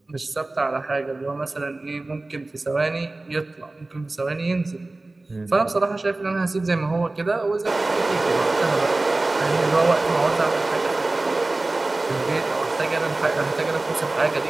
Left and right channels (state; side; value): quieter; left; 3.0 dB